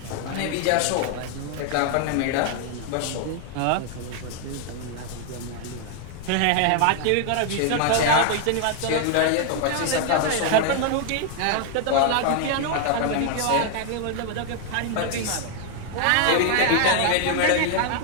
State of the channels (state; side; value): different; both; correlation 0.00